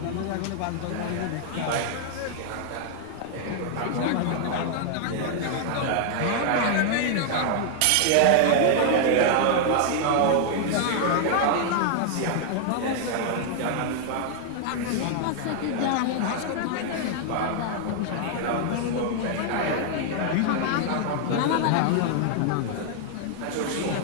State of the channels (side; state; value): both; different; correlation 0.00